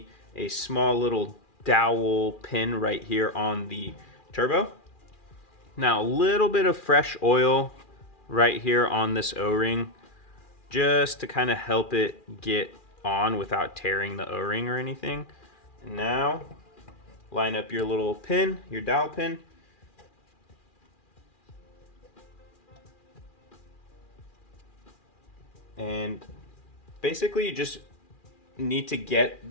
a small little dowel pin right here on the turbo. Now, a little bit of fresh oil right here on this O-ring, just to kind of help it get on without tearing the O-ring or anything. And now, line up your little pin, your dowel pin. And basically you just need to get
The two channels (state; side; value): late; right; 2.4 ms